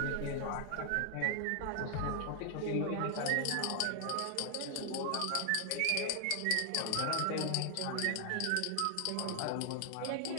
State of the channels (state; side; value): different; both; correlation 0.00